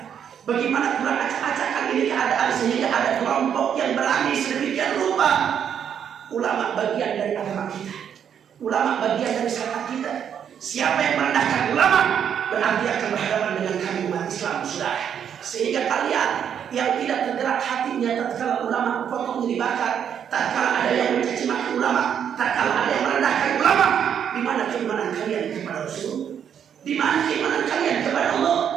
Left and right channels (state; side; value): quieter; left; 8.5 dB